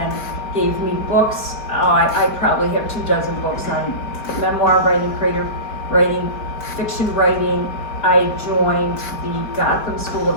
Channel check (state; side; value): late; right; 4.8 ms